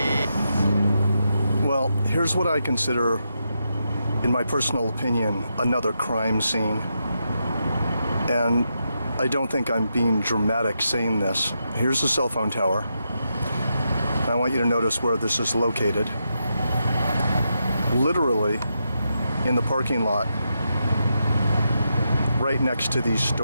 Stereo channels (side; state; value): both; inverted; correlation -0.85